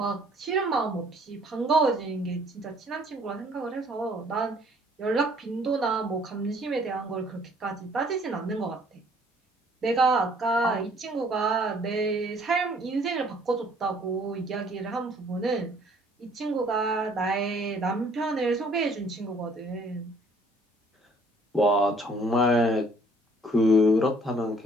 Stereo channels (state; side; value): normal; both; correlation 0.59